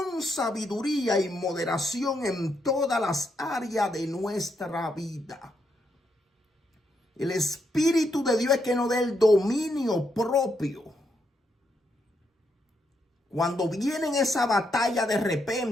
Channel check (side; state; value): both; normal; correlation 0.79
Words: sabiduría y moderación en todas las áreas de nuestra vida. El Espíritu de Dios es que nos dé el dominio propio. Cuando viene esa batalla de